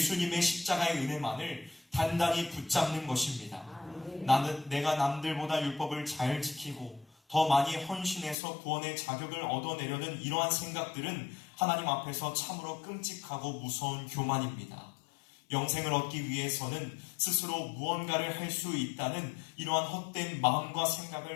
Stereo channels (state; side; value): drops out; right; at 8.3 s